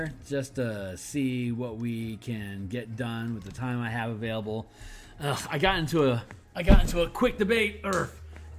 just to see what we can get done with the time I have available. I got into a quick debate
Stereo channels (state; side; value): identical; both; correlation 1.00